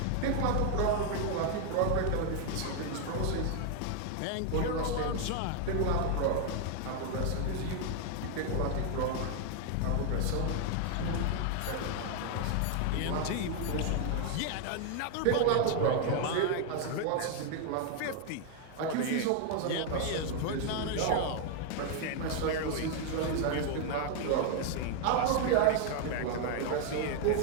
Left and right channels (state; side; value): different; both; correlation 0.00